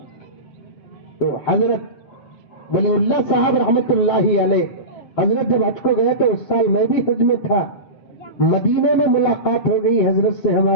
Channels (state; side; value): late; right; 7.2 ms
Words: تو حضرت ولی اللہ صاحب رحمت اللہ علیہ, حضرت جب حج کو گئے تو اس سال میں بھی حج میں تھا. مدینے میں ملاقات ہو گئی حضرت سے